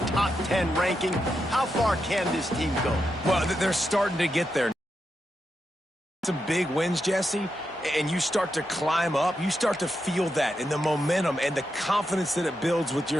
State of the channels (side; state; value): both; normal; correlation 0.86